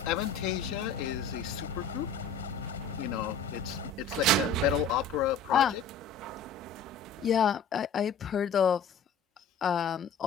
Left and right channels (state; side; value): quieter; right; 4.5 dB